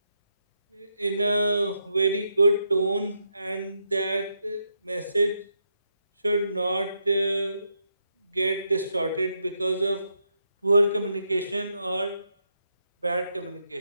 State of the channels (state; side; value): inverted; both; correlation -0.81